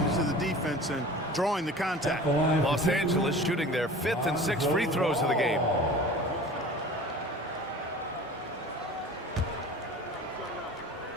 to the defense and drawing the contact. Los Angeles shooting their 5th and 6th free throws of the game.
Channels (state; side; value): normal; both; correlation 0.40